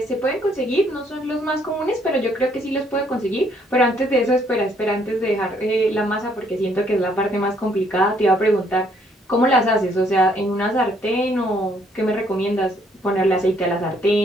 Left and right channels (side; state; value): both; normal; correlation 0.67